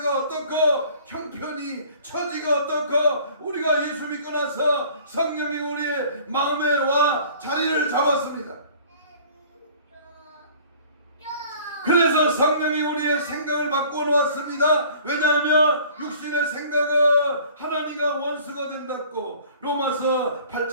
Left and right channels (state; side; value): inverted; both; correlation -0.50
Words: 어떻고, 형편이, 처지가 어떻고, 우리가 예수 믿고 나서 성령이 우리의 마음에 와 자리를 잡았습니다. 그래서 성령이 우리의 생각을 바꿔 놓았습니다. 왜냐하면 육신의 생각은 하나님과 원수가 된다고 로마서